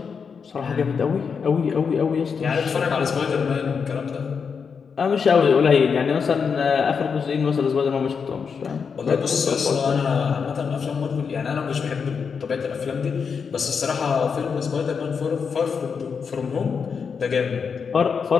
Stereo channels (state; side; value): quieter; right; 6.0 dB